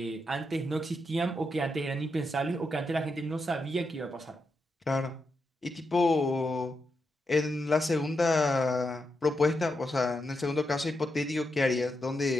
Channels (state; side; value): normal; both; correlation 0.85